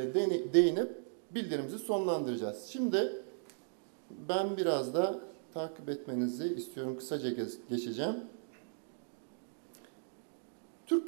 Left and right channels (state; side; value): silent; left; digital silence